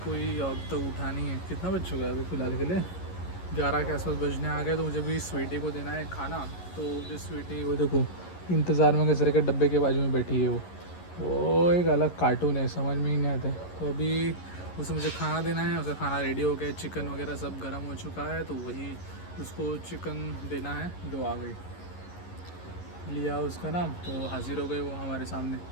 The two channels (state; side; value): late; right; 11 ms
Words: कोई अब तक उठा नहीं है। कितना बज चुका है अभी फ़िलहाल के लिए? 11 के आसपास बजने आ गए। तो मुझे भी स्वीटी को देना है खाना। तो मुझे स्वीटी वो देखो इंतज़ार में कचरे के डब्बे के बाजू में बैठी है वो एक अलग कार्टून है, समझ में ही नहीं आता। तो अभी उसे मुझे खाना देना है। उसका खाना रेडी हो गया, चिकन वगैरह सब गर्म हो चुका है। तो वही उसको चिकन देना है। दो आ गई, लिया उसका नाम, तो हाजिर हो गई वो हमारे सामने,